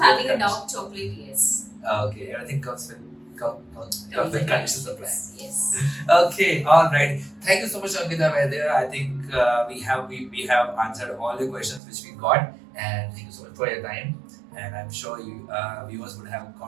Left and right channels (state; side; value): drops out; left; at 11.8 s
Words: a dark chocolate, yes. Okay, everything comes with conditions apply. Yes. Okay, all right. Thank you so much, Ankita Vaidya. I think we have answered all the questions which we got, and thank you so much for your time. And I'm sure you viewers would have